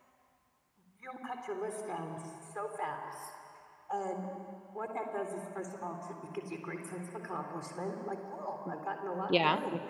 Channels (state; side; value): identical; both; correlation 1.00